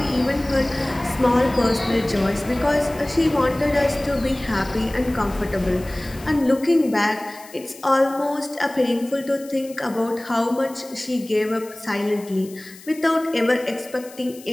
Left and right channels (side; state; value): left; noise; hiss, 20 dB below the sound